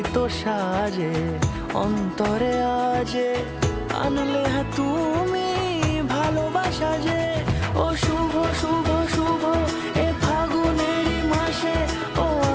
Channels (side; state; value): both; identical; correlation 1.00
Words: এত সাজে অন্তরে আজে আনলে হ্যাঁ তুমি ভালোবাসা যে। ও শুভ শুভ শুভ এ ফাগুনেরই মাসে, ও